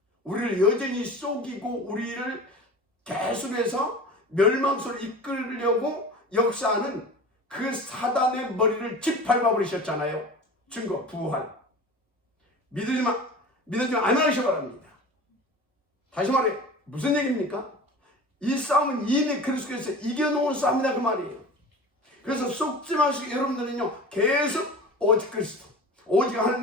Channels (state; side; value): normal; both; correlation 0.36